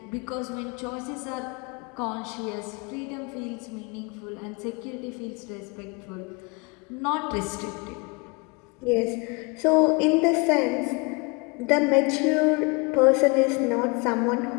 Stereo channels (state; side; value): quieter; right; 29.3 dB